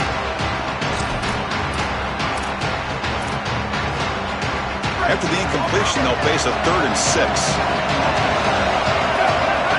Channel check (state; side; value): identical; both; correlation 1.00